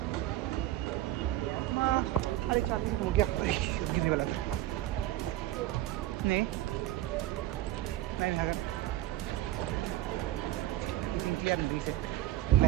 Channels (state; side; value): quieter; left; 14.8 dB